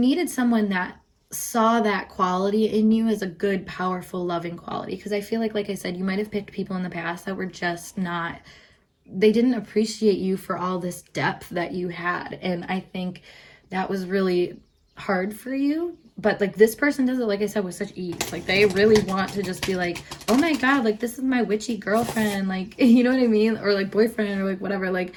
someone that saw that quality in you as a good, powerful, loving quality. Because I feel like I said, you might have picked people in the past that were just not, they didn't appreciate you for all this depth that you had. And I think that was really hard for you. But like this person does it, like I said, with such ease. Like they really want to just be like, oh my God, like this is my witchy girlfriend. Like, you know what I mean? Or like boyfriend, or like whatever. Like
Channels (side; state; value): both; identical; correlation 1.00